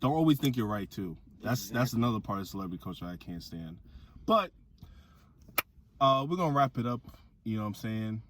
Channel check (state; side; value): identical; both; correlation 1.00